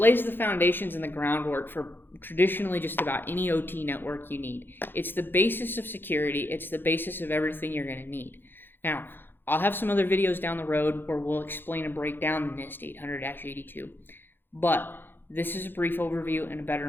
the foundations and the groundwork for traditionally just about any OT network you need. It's the basis of security. It's the basis of everything you're going to need. Now, I'll have some other videos down the road where we'll explain and break down the NIST 800-82, but this is a brief overview and a better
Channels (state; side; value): late; right; 0.099 ms